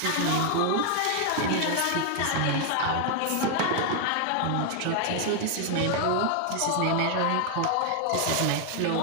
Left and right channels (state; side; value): different; both; correlation 0.00